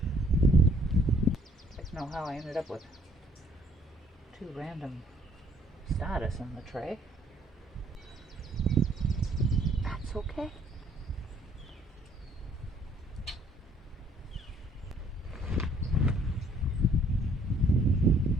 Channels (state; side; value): normal; both; correlation 0.62